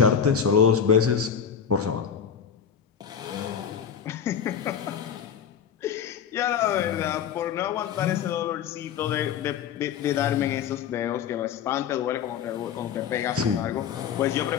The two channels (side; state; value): right; quieter; 7.8 dB